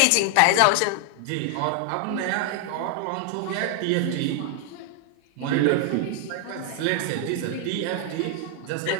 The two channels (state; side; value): different; both; correlation 0.00